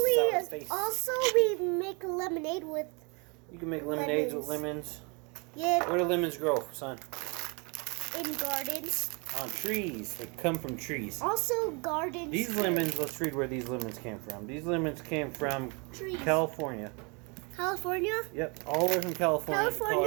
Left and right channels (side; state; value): left; quieter; 31.7 dB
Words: sour face. we make lemonade with. You can make lemonades with lemons. lemons. Yeah, Where do lemons grow, son? in gardens. On trees. They come from trees. Also, gardens. These too. lemons, let's read where these lemons came from. These lemons came from Trees. California. California. Yep, all the way from California,